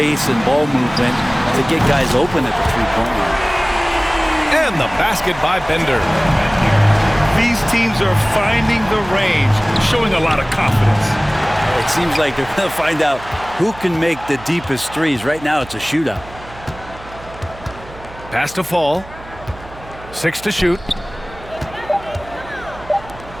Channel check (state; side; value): noise; right; hum, 18 dB below the sound